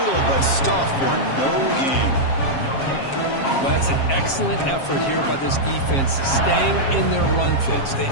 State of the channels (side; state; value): right; late; 7.4 ms